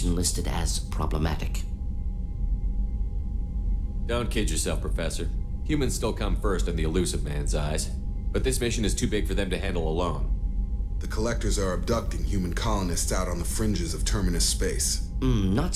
listed as problematic. Don't kid yourself, Professor. Humans still come first in the elusive man's eyes. But this mission is too big for them to handle alone. The Collectors are abducting human colonists out on the fringes of Terminus space. Not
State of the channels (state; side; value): identical; both; correlation 1.00